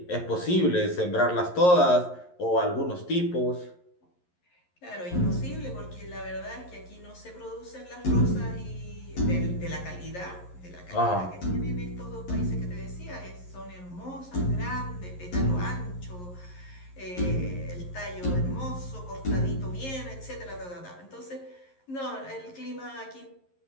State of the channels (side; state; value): right; late; 11 ms